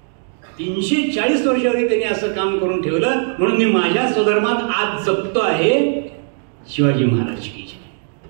340 वर्षावरी त्यांनी असं काम करून ठेवलं, म्हणून मी माझ्या स्वधर्मात आज जपतो आहे शिवाजी महाराज की.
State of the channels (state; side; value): silent; left; digital silence